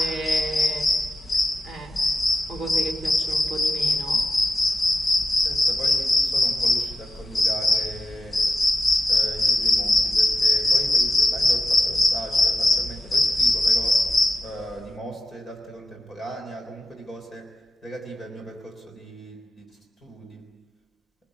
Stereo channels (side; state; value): both; normal; correlation 0.90